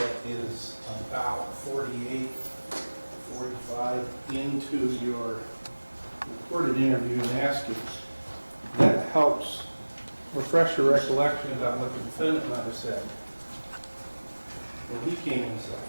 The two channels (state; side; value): inverted; both; correlation -1.00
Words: is about 48, 45 into your recorded interview and ask if that helps refresh your recollection about what the defendant and I said when he came inside.